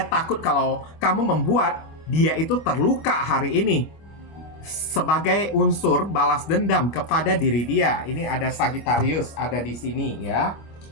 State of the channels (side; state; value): right; late; 25 ms